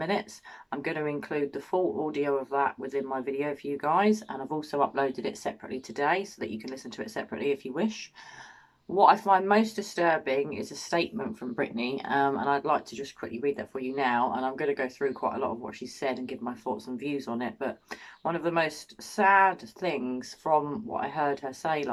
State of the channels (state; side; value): identical; both; correlation 1.00